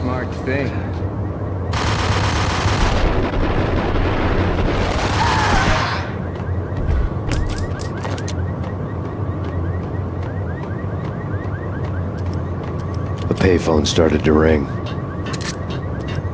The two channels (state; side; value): identical; both; correlation 1.00